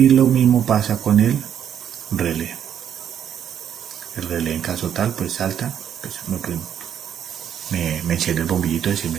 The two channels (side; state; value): left; quieter; 9.1 dB